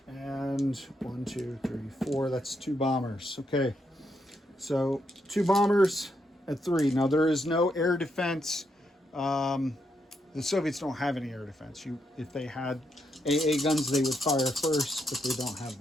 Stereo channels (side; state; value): both; normal; correlation 0.79